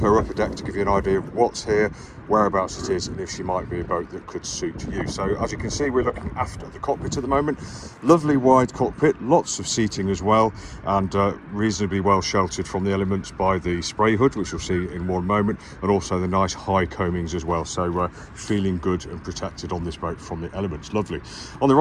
upper deck to give you an idea of what's here, whereabouts it is, and if she might be a boat that could suit you. So as you can see, we're looking after the cockpit at the moment. Lovely wide cockpit, lots of seating as well, and reasonably well sheltered from the elements by the spray hood, which you'll see in one moment, and also the nice high coamings as well. So feeling good and protected on this boat from the elements. Lovely. On the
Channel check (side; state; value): both; identical; correlation 1.00